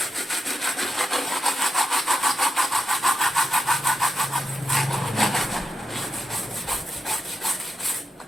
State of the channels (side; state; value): both; normal; correlation 0.86